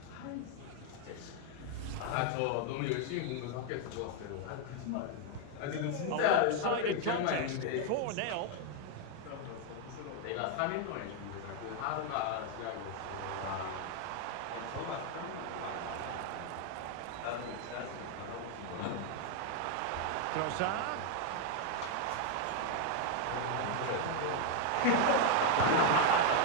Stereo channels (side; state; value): both; different; correlation 0.00